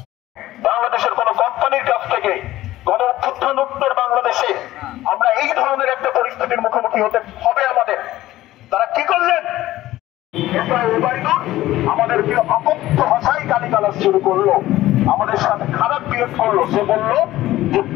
বাংলাদেশের কোন কোম্পানির কাছ থেকে গণ অভ্যুত্থান উত্তর বাংলাদেশে আমরা এই ধরনের একটা পরিস্থিতির মুখোমুখি হতে হবে আমাদের। তারা কি করলেন? আমাদেরকে অকথ্য ভাষায় গালিগালাজ শুরু করলো, আমাদের সাথে খারাপ বিহেভ করলো। সে বললো যে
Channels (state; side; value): quieter; right; 15.6 dB